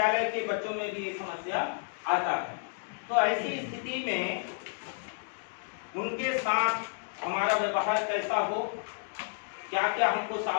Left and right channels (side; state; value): right; silent; digital silence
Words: के बच्चों में भी ये समस्या आता है। तो ऐसी स्थिति में उनके साथ हमारा व्यवहार कैसा हो, क्या क्या हमको